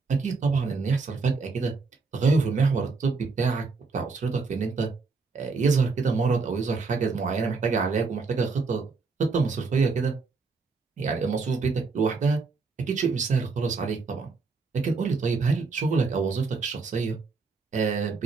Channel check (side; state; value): left; quieter; 4.4 dB